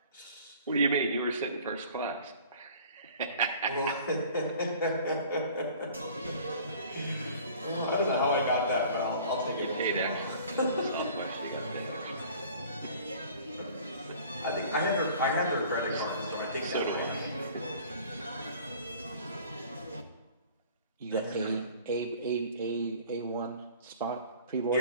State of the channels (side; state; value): both; inverted; correlation -0.48